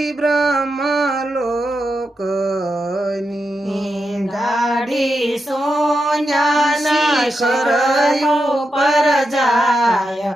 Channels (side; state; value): both; normal; correlation 0.87